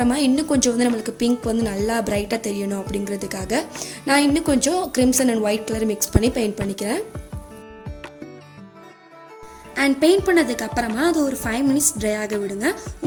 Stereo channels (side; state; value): both; identical; correlation 1.00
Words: இன்னும் கொஞ்சம் வந்து நம்மளுக்கு பிங்க் வந்து நல்லா பிரைட்டாக தெரியணும் அப்படிங்கிறதுக்காக நான் இன்னும் கொஞ்சம் crimson and white colour mix பண்ணி பெயிண்ட் பண்ணிக்கிறேன். அண்ட் பெயிண்ட் பண்ணதுக்கு அப்புறமா அது ஒரு 5 மினிட்ஸ் ட்ரை ஆக விடுங்க.